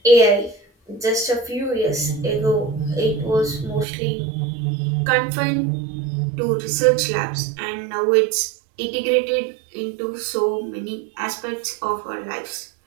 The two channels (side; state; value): left; drops out; at 3.9 s